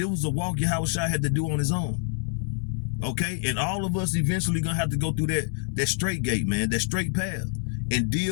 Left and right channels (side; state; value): right; silent; 61 dB below the other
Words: was a walk Yahushua had to do on his own. Okay, and all of us eventually gonna have to go through that straight gate, man, that straight path, and